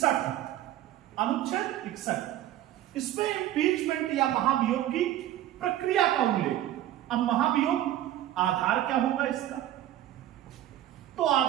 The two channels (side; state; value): left; quieter; 13.0 dB